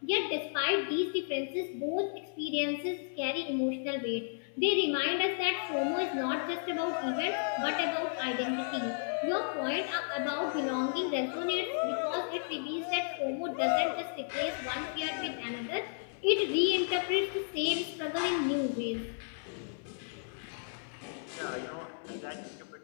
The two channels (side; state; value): right; silent; 56 dB below the other